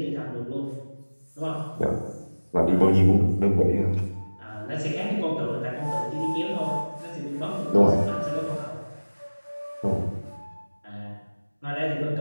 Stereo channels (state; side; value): inverted; both; correlation -1.00